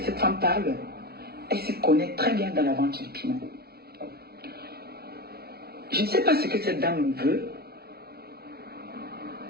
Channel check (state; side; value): late; left; 0.45 ms